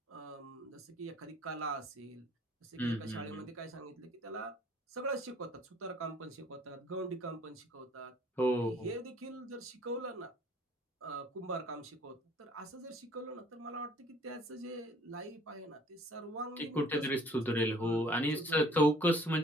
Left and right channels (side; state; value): both; normal; correlation 0.56